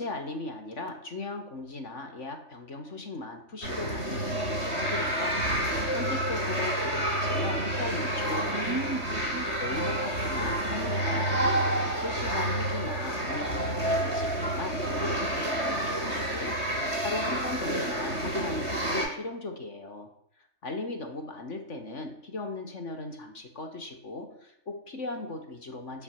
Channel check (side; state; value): right; late; 3.2 ms